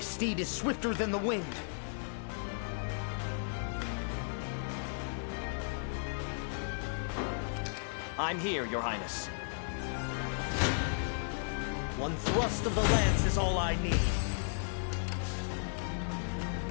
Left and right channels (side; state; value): right; silent; digital silence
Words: is swifter than the wind. I'm here, Your Highness. One thrust of the lance is all I need.